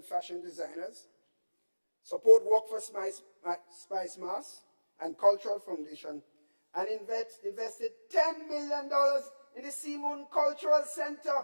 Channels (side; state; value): both; inverted; correlation -1.00